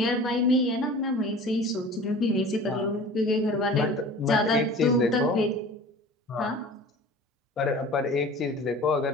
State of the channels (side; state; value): both; normal; correlation 0.41